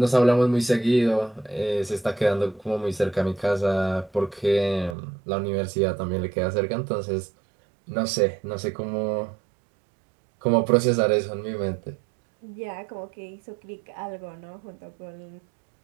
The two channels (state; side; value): drops out; left; at 5.0 s